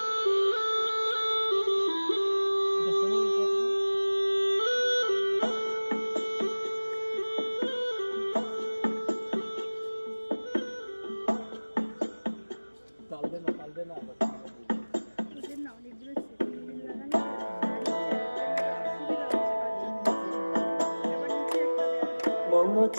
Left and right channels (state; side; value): inverted; both; correlation -1.00